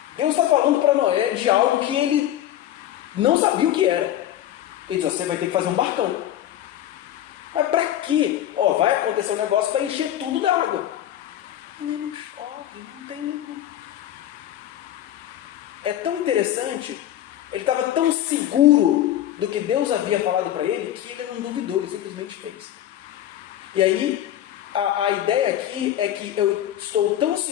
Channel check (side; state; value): right; quieter; 12.2 dB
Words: Deus está falando para Noé de algo que ele não sabia o que era. Ele diz, você vai ter que fazer um barcão. Mas para quê? Vai acontecer um negócio para encher tudo d'água. Não chove, não tem nenhum. É tão interessante, ele estava tão seguro do que Deus havia falado para ele, que ele não duvidou, ele simplesmente fez. E aí, a ideia aqui é que eu estou tão